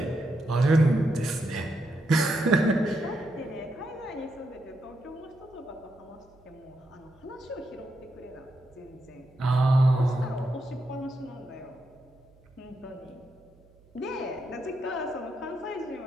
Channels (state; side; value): noise; right; hum, 29 dB below the sound